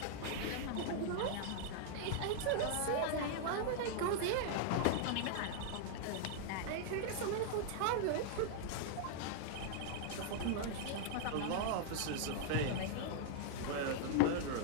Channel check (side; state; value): both; different; correlation -0.01